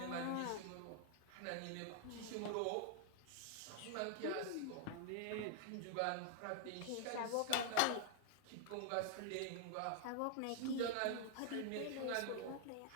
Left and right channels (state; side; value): different; both; correlation 0.00